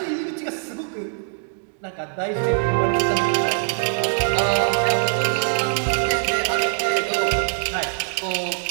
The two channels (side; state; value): left; silent; 64 dB below the other